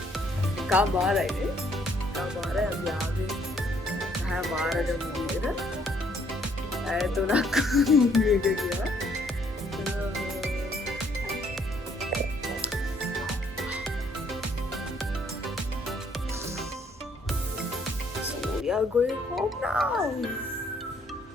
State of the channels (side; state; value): both; normal; correlation 0.66